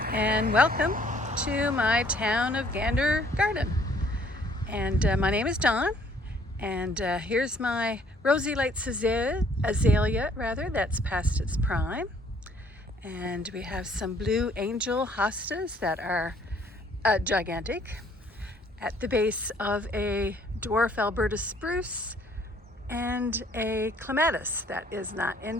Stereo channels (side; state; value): both; normal; correlation 0.61